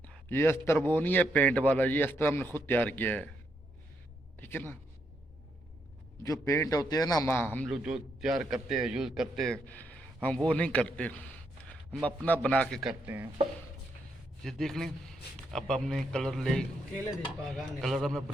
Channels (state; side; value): normal; both; correlation 0.78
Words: ये अस्तर वो नहीं है पेंट वाला, ये अस्तर हमने खुद तैयार किया है, ठीक है ना। जो पेंट होते हैं ना हम लोग जो तैयार करते हैं यूज़ करते हैं, हम वो नहीं करते, हम अपना बना के करते हैं। ये देख लें, अब हमने कलर हमने